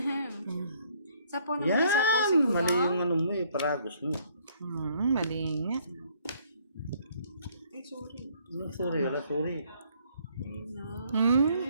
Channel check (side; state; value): both; inverted; correlation -0.64